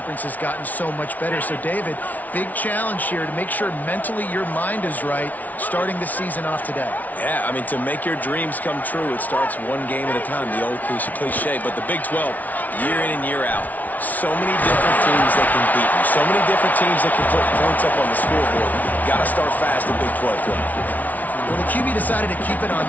has gotten so much better. So, David, big challenge here to make sure mentally your mind is right starting the season off today. Yeah, I mean, to make your dreams come true, it starts one game at a time, the old cliche. But the Big 12, year in and year out, so many different teams that can beat you, so many different teams that can put points up on the scoreboard. Got to start fast in Big 12 play. Well, the QB decided to keep it on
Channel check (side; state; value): right; late; 0.076 ms